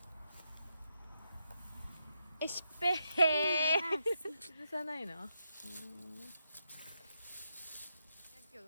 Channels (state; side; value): inverted; both; correlation -0.83